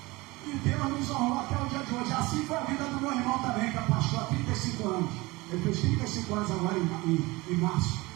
E Deus nos honrou até o dia de hoje. Assim foi a vida do meu irmão também, que é pastor há 35 anos. Ele fez 35 anos agora em março.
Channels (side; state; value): left; quieter; 22.3 dB